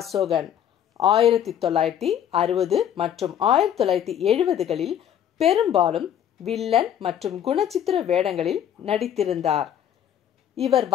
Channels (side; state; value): right; quieter; 9.8 dB